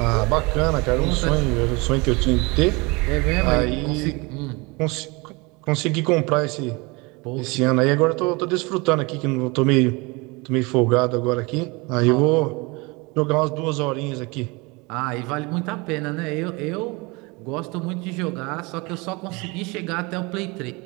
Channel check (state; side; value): quieter; left; 26.5 dB